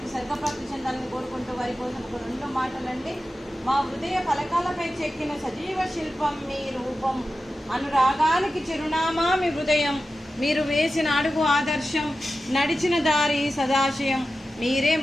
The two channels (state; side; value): normal; both; correlation 0.93